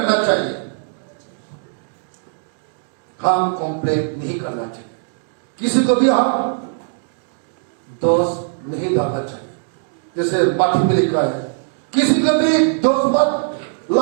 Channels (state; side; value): silent; left; digital silence